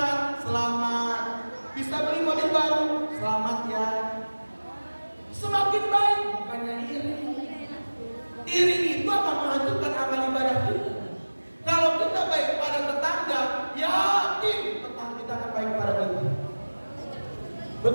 selamat. Bisa beli mobil baru, selamat ya. Semakin baik, bukannya iri. Iri itu akan menghancurkan amal ibadah kita. Kalau kita baik pada tetangga, yakin tetangga kita akan baik pada kita.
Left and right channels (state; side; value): inverted; both; correlation -1.00